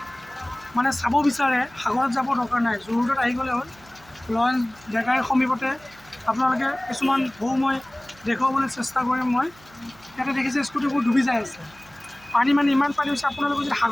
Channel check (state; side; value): noise; right; hum, 26 dB below the sound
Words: মানে চাব বিচাৰে সাগৰত যাব দৰকাৰ নাই, জু-ৰোডত আহি গ'লে হ'ল। লয়ন্স ডেকাৰীৰ সমীপতে আপোনালোকে কিছুমান ঢৌ মই দেখুৱাবলৈ চেষ্টা কৰিম। মই ইয়াতে দেখিছে স্কুটিবোৰ ডুবি যাই আছে, পানী মানে ইমান পানী হৈছে। আপোনালোকে যদি